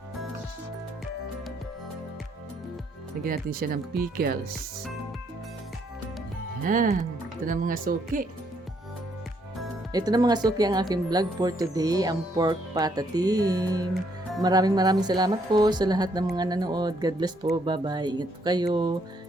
Lagyan natin siya ng pickles. Ayan. Ito na mga suki. Ito na mga suki ang aking vlog for today. Ang pork patatim. Maraming salamat po sa lahat ng mga nanood. God bless po. Bye-bye. Ingat po kayo.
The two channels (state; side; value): normal; both; correlation 0.71